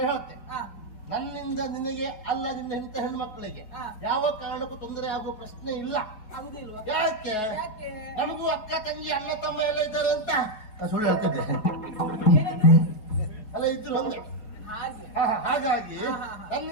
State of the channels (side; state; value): right; late; 4.7 ms